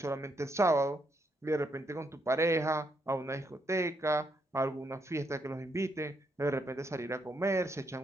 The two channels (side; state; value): both; normal; correlation 0.77